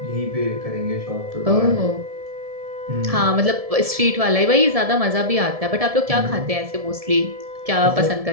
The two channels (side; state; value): left; late; 1.7 ms